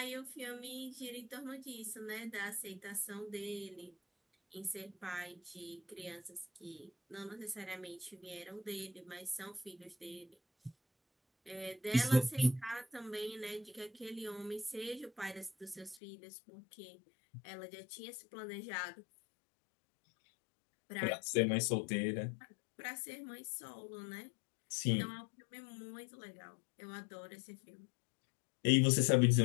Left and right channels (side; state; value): right; drops out; at 16.0 s